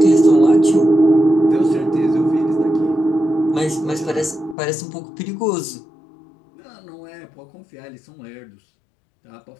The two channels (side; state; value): right; drops out; at 4.5 s